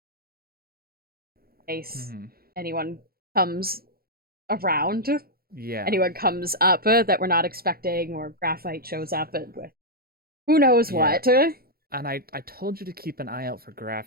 in case anyone comes around. Yeah. Anyone comes up that we're not expecting, or graphite shows up with who knows what. And I told you to keep an eye out for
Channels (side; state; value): left; late; 0.44 ms